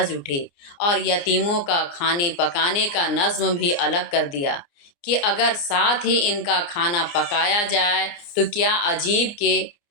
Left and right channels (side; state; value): right; late; 29 ms